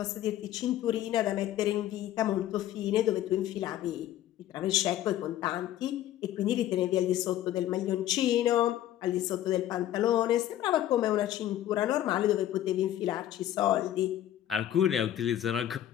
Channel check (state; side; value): quieter; right; 12.6 dB